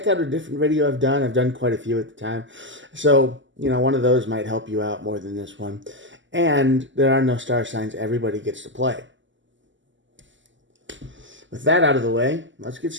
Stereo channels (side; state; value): left; late; 0.54 ms